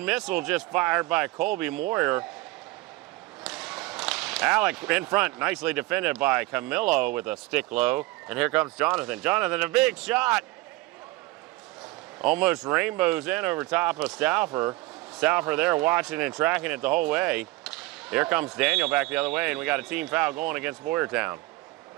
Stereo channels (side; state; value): left; quieter; 20.4 dB